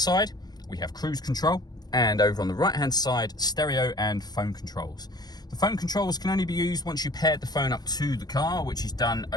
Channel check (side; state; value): right; late; 0.19 ms